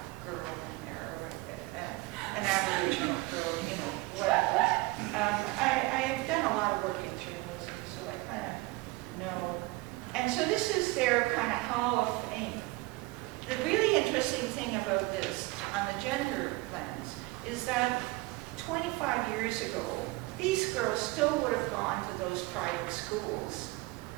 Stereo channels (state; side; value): quieter; left; 22.0 dB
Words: girl in there, or an Aboriginal girl, whatever. I have done a lot of work in journalism, so I kind of know. And so this is their kind of Hall of Fame. The really interesting thing about this, on the gender lens, is that 25 years ago, these girls still would have gone to those private schools.